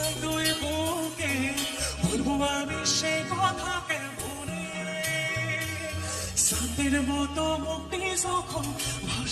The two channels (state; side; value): identical; both; correlation 1.00